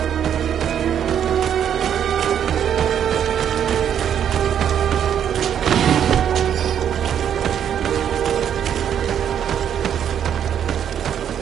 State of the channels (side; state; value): left; quieter; 9.1 dB